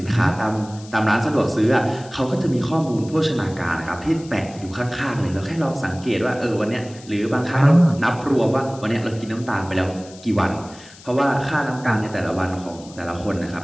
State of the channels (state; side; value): noise; left; hiss, 21 dB below the sound